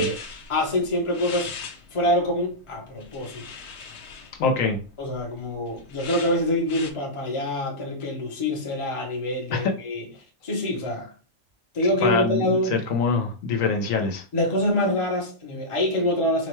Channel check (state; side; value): normal; both; correlation -0.12